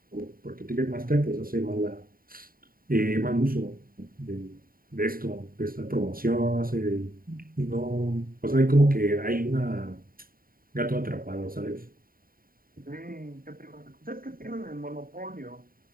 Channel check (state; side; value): late; left; 0.42 ms